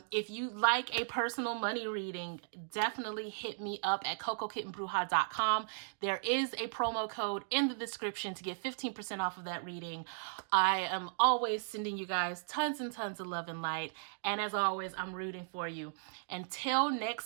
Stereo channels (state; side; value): silent; left; digital silence